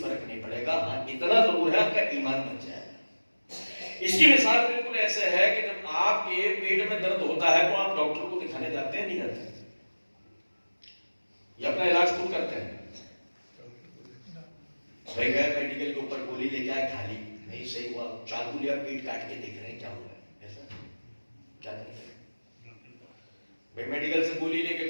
نہیں پڑے گا. ہاں اتنا ضرور ہے آپ کا ایمان بچ جائے گا. اس کی مثال بالکل ایسے ہے کہ جب آپ کے پیٹ میں درد ہوتا ہے تو آپ ڈاکٹر کو دکھانے جاتے ہیں نہیں جاتے؟ یا اپنا علاج خود کرتے ہیں؟ بھائی گئے میڈیکل کے اوپر گولی لے کے آئے، کھا لی، نہیں صحیح ہوا، چاقو لیا پیٹ کاٹ کے دیکھ رہے ہیں کیا ہوا ہے، ایسا کیا کرتے ہیں؟ بھائی میڈیکل سے گولی لے کے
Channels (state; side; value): inverted; both; correlation -1.00